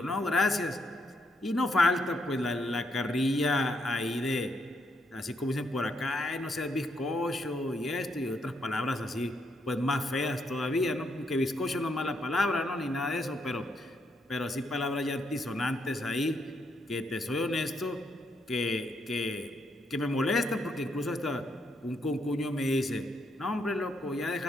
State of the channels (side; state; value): both; normal; correlation 0.76